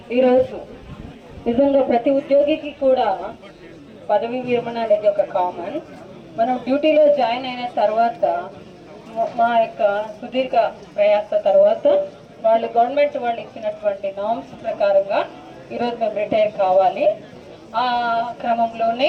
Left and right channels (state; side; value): identical; both; correlation 1.00